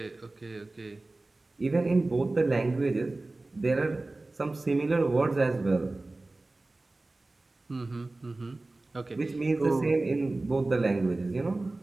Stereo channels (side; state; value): left; quieter; 3.1 dB